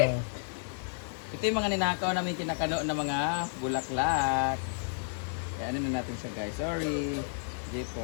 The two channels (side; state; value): right; silent; digital silence